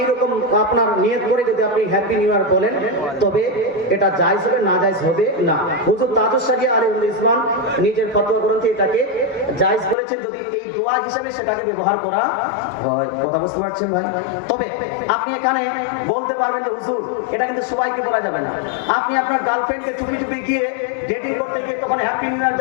এইরকম আপনার নিয়ত করে যদি আপনি হ্যাপি নিউ ইয়ার বলেন, তবে এটা জায়েজ হবে, না জায়েজ হবে না। হুজুর তাজুস সাগি আলিউল ইসলাম নিজের ফতোয়া গ্রন্থে এটাকে জায়েজ বলেছেন যদি এই দোয়া হিসাবে সেটাকে ব্যবহার করা হয়। কথা বুঝতে পারছেন ভাই? তবে আপনি এখানে বলতে পারবেন যে হুজুর এটা কিন্তু সবাইকে বলা যাবে না। আপনি আপনার গার্লফ্রেন্ডকে চুপি গিয়ে ডেটিং করতে গিয়ে তখন হ্যাপি নিউ ইয়ার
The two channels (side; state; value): right; drops out; at 10.0 s